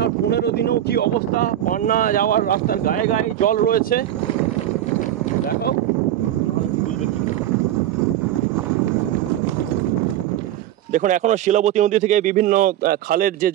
15 দিনেও কি অবস্থা, পান্না যাওয়ার রাস্তার গায়ে গায়ে জল রয়েছে। দেখাও, বুঝবে কি। দেখুন এখনো শিলাবতী নদী থেকে বিভিন্ন খালের যে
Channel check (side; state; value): left; quieter; 12.2 dB